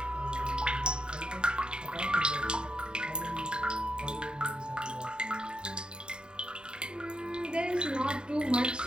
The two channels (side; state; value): left; late; 0.049 ms